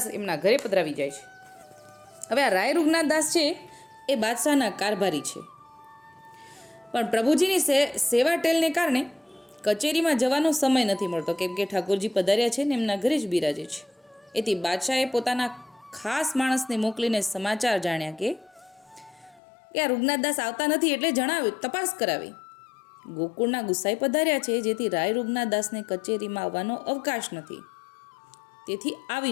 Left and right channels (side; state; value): right; drops out; at 19.4 s